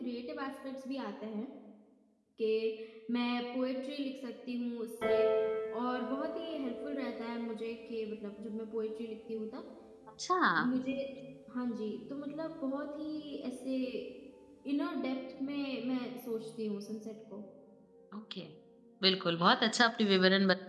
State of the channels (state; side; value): identical; both; correlation 1.00